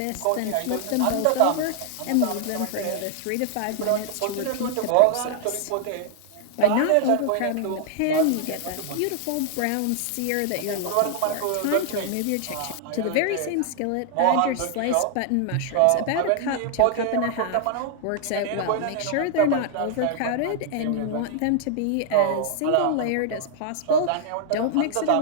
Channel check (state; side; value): different; both; correlation 0.00